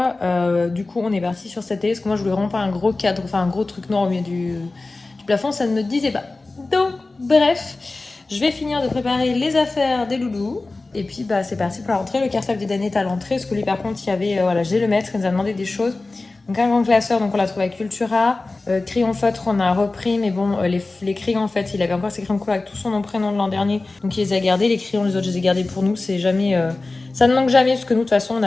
Du coup, on est parti sur cette télé parce que moi, je voulais vraiment pas un gros cadre, enfin un gros truc noir au milieu du plafond. Ça ne me disait pas. Donc, bref. Je vais finir de préparer les affaires des loulous. Et puis, bah, c'est parti pour la rentrée. Le cartable d'Eden est à l'entrée. Parce que lui, par contre, il y avait, voilà, j'ai le maître, il nous a demandé des choses. Donc, un grand classeur, donc on l'a trouvé à Cultura. Crayon feutre, on a repris. Mais bon, les crayons, en fait, il avait encore ses crayons couleur avec tout son nom, prénom de l'an dernier. Donc, il les a gardés. Les crayons, les autres, je les ai gardés pour nous. C'est jamais, ça ne manque jamais. Parce que nous, de toute façon, on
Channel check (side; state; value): right; quieter; 3.3 dB